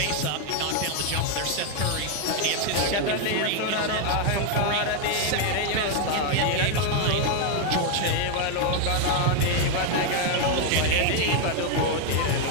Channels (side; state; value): both; different; correlation 0.01